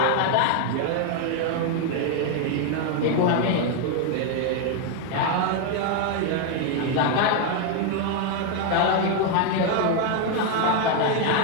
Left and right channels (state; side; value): different; both; correlation 0.01